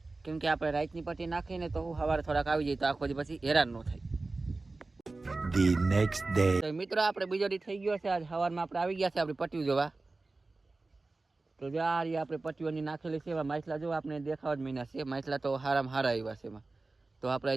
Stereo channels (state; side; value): quieter; left; 3.4 dB